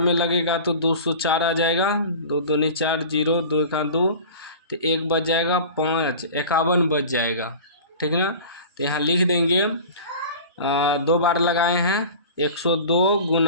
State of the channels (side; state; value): both; inverted; correlation -0.38